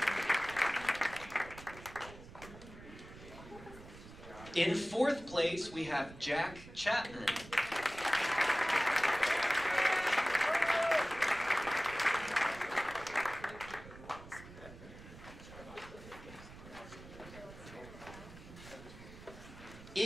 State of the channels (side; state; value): right; noise; rumble, 16 dB below the sound